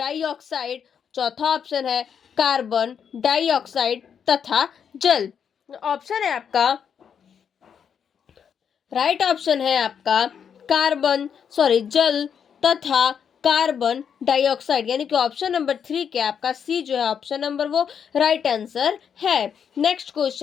चौथा ऑप्शन है कार्बन डाइऑक्साइड तथा जल। ऑप्शन है आपका राइट ऑप्शन है आपका जल तथा कार्बन डाइऑक्साइड, यानी कि ऑप्शन नंबर 3 क्या आपका सी जो है ऑप्शन नंबर वो राइट आंसर है। नेक्स्ट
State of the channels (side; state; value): right; quieter; 7.6 dB